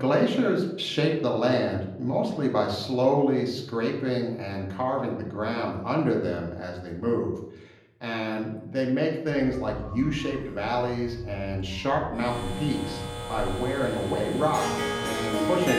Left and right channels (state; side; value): identical; both; correlation 1.00